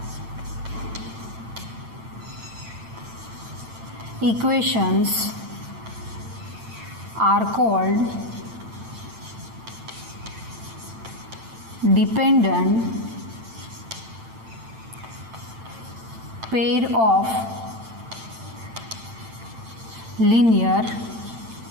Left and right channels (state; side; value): late; left; 8.9 ms